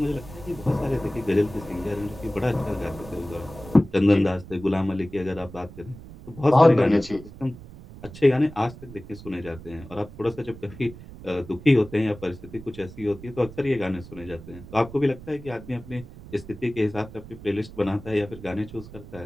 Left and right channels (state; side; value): noise; right; rumble, 16 dB below the sound